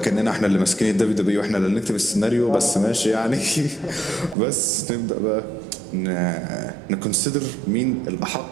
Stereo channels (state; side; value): drops out; left; at 4.4 s